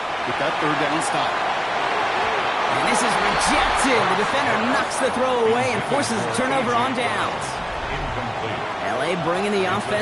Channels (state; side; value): identical; both; correlation 1.00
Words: with that 3rd down stop. And this is rejected. The defender knocks the throw away and forces a turnover on downs. LA bringing the